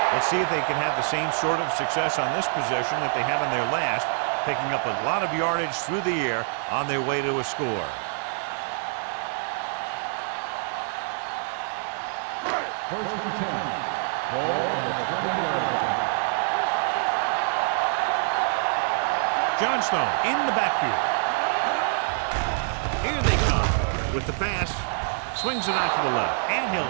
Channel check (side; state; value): left; silent; 58 dB below the other